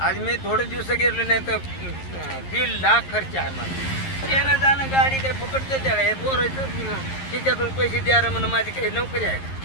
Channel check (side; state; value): right; late; 11 ms